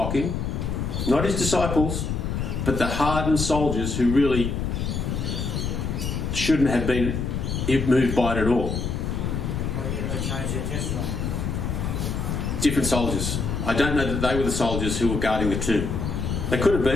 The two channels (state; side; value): noise; left; rumble, 2 dB below the sound